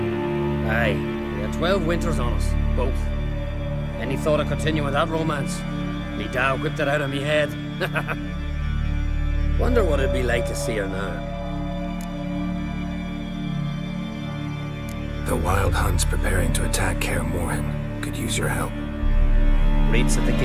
Aye. We had 12 winters on us. Both. Any thought of continuing that romance? Me Dow whipped it out of me head. Wonder what it'd be like to see her now. The Wild Hunt's preparing to attack Kaer Morhen. Could use your help. Raid's at the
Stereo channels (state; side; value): identical; both; correlation 1.00